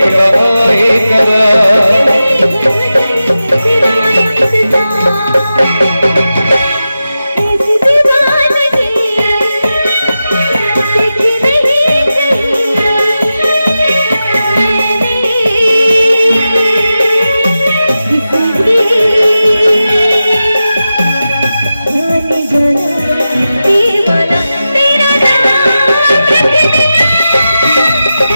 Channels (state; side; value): inverted; both; correlation -0.92